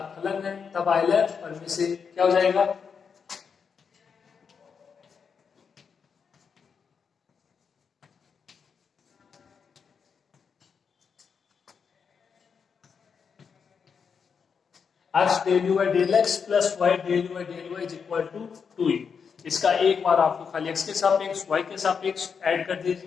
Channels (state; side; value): quieter; right; 6.2 dB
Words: फलन है, तब आइलर और में से क्या हो जाएगा, x del you by del x plus y del you by del y is equal to 2u। इसका एक बार आपको खाली एक्स के सापेक्ष वाई के सापेक्ष ऐड कर